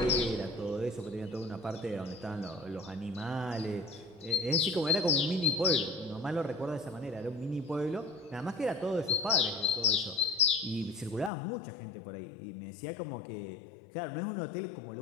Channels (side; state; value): right; drops out; at 11.3 s